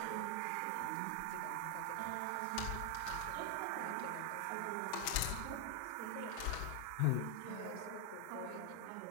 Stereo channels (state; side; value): different; both; correlation 0.00